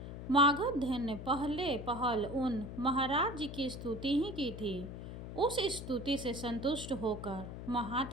मागध ने पहल उन महाराज जी की स्तुति ही की थी। उस स्तुति से संतुष्ट होकर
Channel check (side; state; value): left; noise; hum, 9 dB below the sound